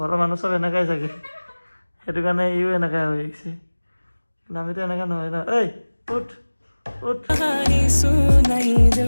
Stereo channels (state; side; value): inverted; both; correlation -1.00